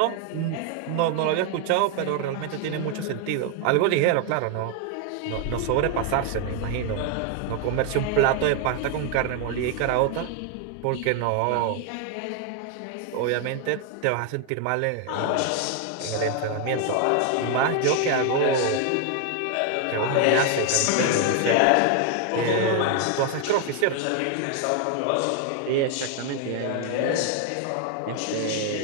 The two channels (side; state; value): both; different; correlation 0.00